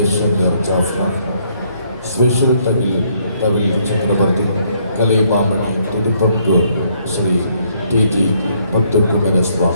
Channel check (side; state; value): both; inverted; correlation -0.69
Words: ശങ്കർ ജാഫ്ന. സ്പെഷ്യൽ തമിഴ് ചക്രവർത്തി കലൈമാമണി തിരുപ്പങ്കൂർ ശ്രീ TG